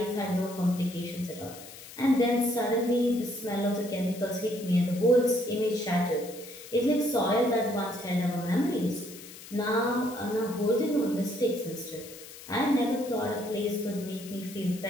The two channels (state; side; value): noise; left; hiss, 16 dB below the sound